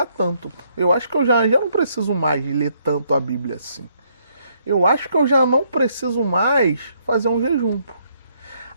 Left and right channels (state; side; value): inverted; both; correlation -0.71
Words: tanto, pô. Eu acho que eu já não preciso mais ler tanto a Bíblia assim. Eu acho que eu já não preciso mais fazer um jejum, pô.